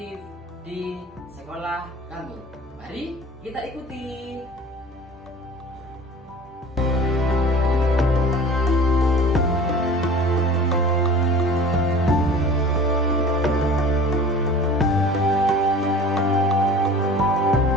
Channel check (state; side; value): normal; both; correlation 0.42